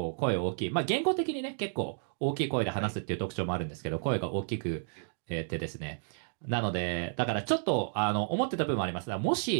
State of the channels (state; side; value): silent; left; digital silence